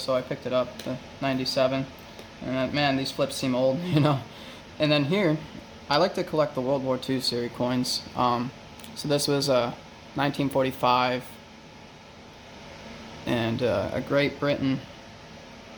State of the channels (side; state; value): both; identical; correlation 1.00